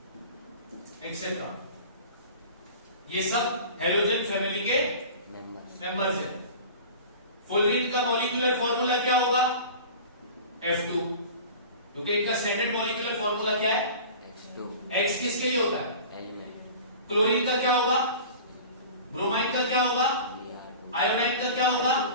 एक्सेट्रा, ये सब हैलोजन फैमिली के मेंबर्स हैं। फुलरीन का मॉलिक्यूलर फॉर्मूला क्या होगा, F2, क्योंकि इनका स्टैंडर्ड मॉलिक्यूलर फॉर्मूला क्या है, X किसके लिए होता है, क्लोरीन का क्या होगा, ब्रोमाइन का क्या होगा, आयोडाइन का क्या होगा,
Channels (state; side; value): inverted; both; correlation -0.38